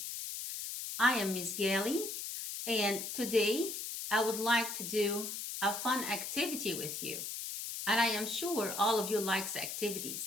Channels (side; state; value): left; noise; hiss, 5 dB below the sound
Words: I am Miss Ghaly, and today I would like to do a fun activity with you. And I am sure all of you likes